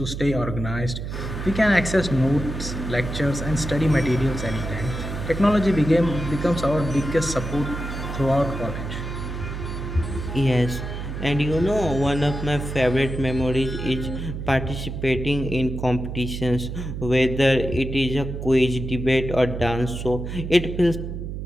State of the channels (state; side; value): noise; right; hum, 6 dB below the sound